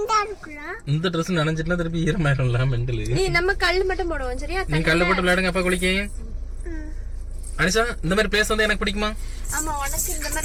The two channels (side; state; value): both; identical; correlation 1.00